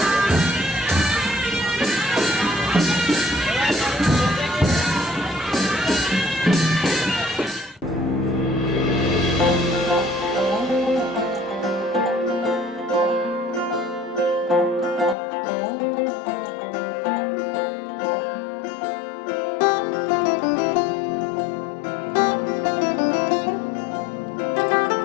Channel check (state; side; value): drops out; right; at 15.2 s